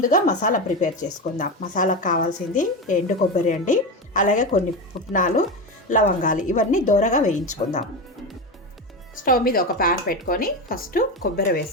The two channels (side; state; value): both; normal; correlation 0.18